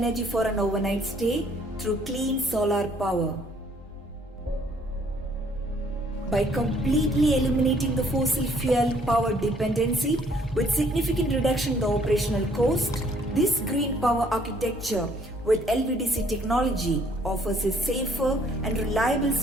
for an overnight stay through clean solar power. By completely eliminating the fossil fuel power dependency with significant reduction in the operational cost, this green power architecture with LVDC technology offers a safer and reliable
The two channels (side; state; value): both; normal; correlation 0.63